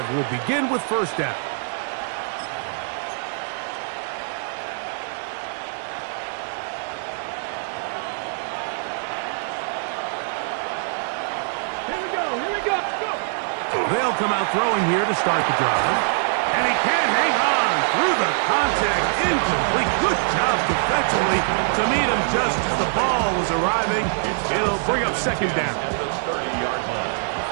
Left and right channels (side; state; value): left; silent; digital silence